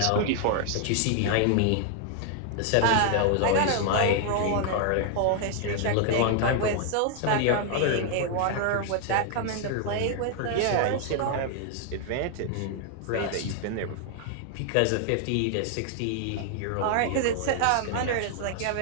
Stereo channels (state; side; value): different; both; correlation 0.00